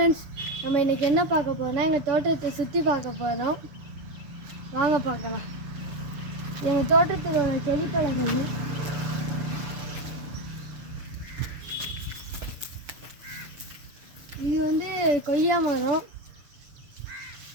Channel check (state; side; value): late; left; 6.9 ms